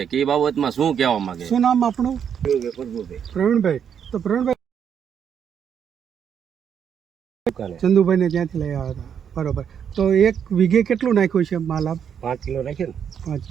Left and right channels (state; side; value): quieter; left; 8.0 dB